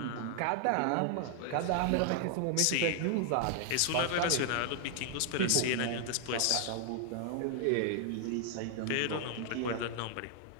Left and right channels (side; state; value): both; different; correlation 0.00